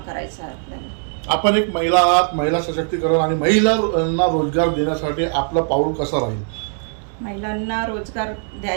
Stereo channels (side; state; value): left; silent; digital silence